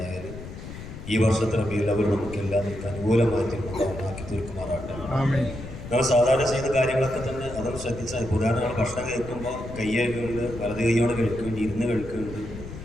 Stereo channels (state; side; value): noise; left; rumble, 11 dB below the sound